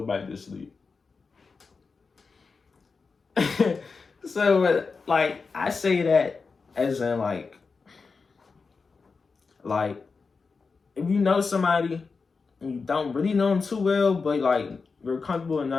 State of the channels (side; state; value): right; quieter; 4.7 dB